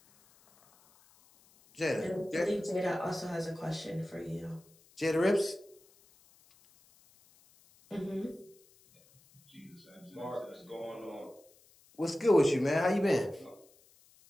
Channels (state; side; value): noise; left; hiss, 29 dB below the sound